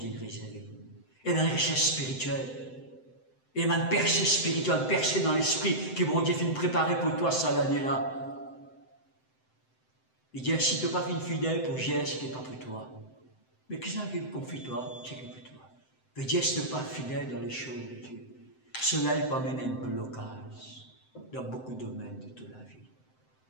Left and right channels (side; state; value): right; late; 7.8 ms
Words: réserver. Et dans la richesse spirituelle. Et dans une percée spirituelle, une percée dans l'esprit, qui vont dire finir préparer pour toi ça l'année-là. Il dit, si tu n'as pas fait une fidèle pour gérer ce qui n'est pas pour toi, mais qu'est-ce qui confie toi, ce qui est pour toi? Mais Dieu, si tu n'es pas fidèle dans les choses de Dieu, cela peut amener un blocage dans beaucoup de domaines de toute la vie.